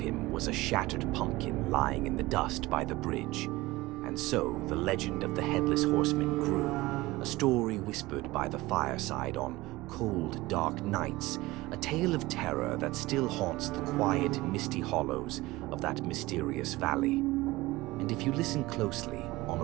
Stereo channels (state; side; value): quieter; left; 19.7 dB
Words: was a shattered pumpkin lying in the dust by the bridge. And so the legend of the Headless Horseman grew, a story whispered by the fireside on cold, dark nights, a tale of terror that still haunts the quiet, misty hollows of that mysterious valley. And if you listen closely, on